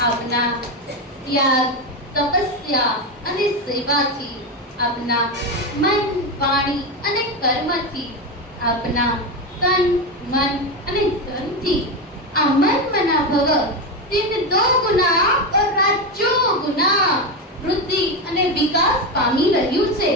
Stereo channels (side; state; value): both; normal; correlation 0.13